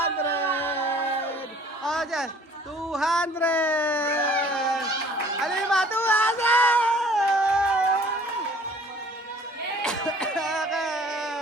Oh, dyan. 200. Ano yung mga 200?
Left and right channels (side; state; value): both; normal; correlation 0.53